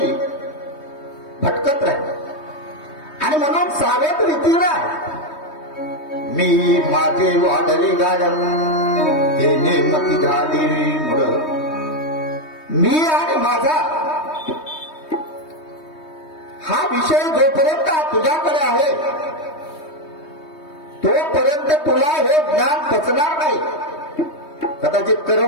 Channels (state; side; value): late; right; 3.2 ms